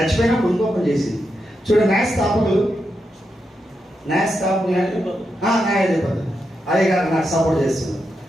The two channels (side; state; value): both; normal; correlation 0.85